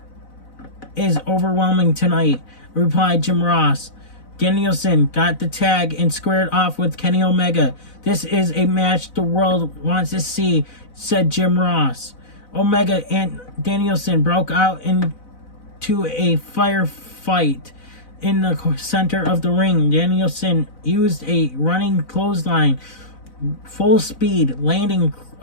is overwhelming tonight, replied Jim Ross. Danielson got the tag and squared off with Kenny Omega. This is a match the world wants to see, said Jim Ross. Omega and Danielson broke out into a firefight in the center of the ring. Danielson used a running clothesline, full speed, landing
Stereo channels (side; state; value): right; late; 4.0 ms